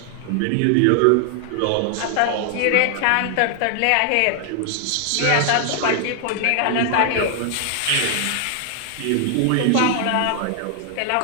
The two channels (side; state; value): both; different; correlation 0.00